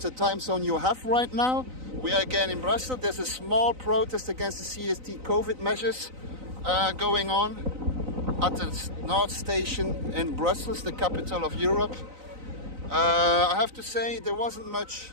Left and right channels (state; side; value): late; left; 3.9 ms